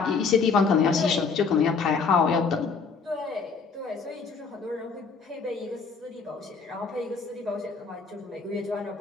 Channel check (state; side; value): quieter; right; 5.0 dB